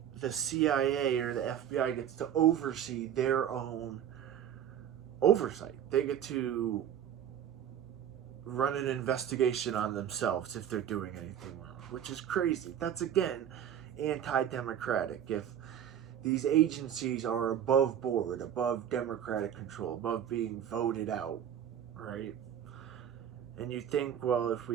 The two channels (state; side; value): quieter; left; 9.6 dB